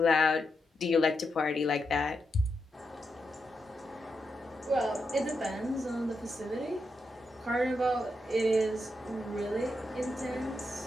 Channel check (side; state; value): both; normal; correlation 0.85